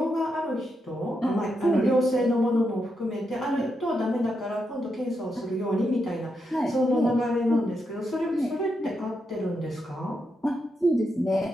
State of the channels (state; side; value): normal; both; correlation 0.83